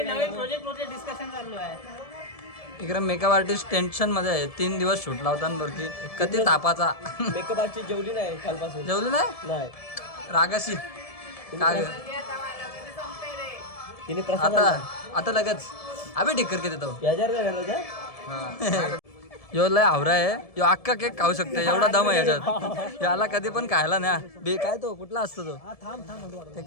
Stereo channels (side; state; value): right; late; 1.7 ms